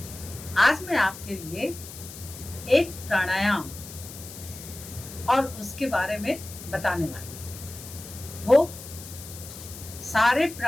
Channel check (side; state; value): left; noise; hiss, 14 dB below the sound